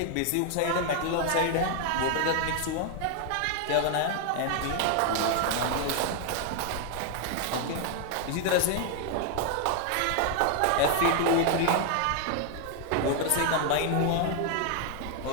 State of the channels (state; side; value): different; both; correlation 0.00